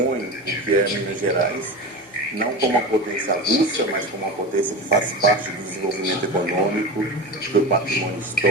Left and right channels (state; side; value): normal; both; correlation 0.26